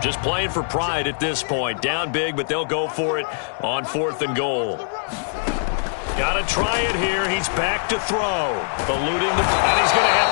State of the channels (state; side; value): silent; right; digital silence